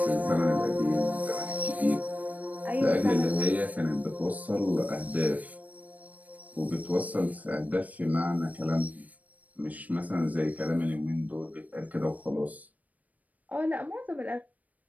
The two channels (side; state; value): left; late; 0.073 ms